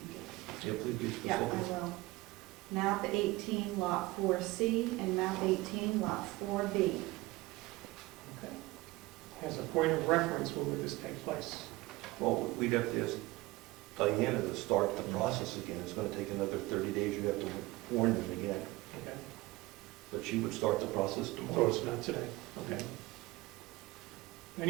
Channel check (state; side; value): quieter; left; 20.6 dB